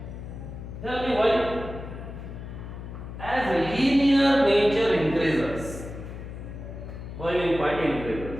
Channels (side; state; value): left; noise; hum, 10 dB below the sound